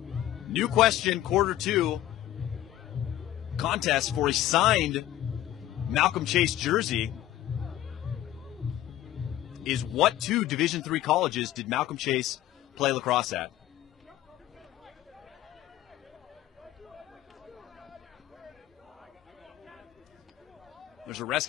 new question, quarter 2 contest for a signed Malcolm Chase jersey is, what 2 Division III colleges did Malcolm Chase play lacrosse at? There's a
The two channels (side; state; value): right; quieter; 13.4 dB